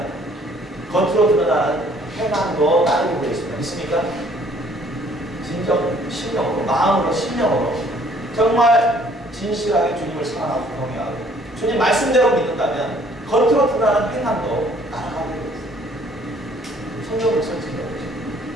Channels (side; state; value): both; normal; correlation 0.59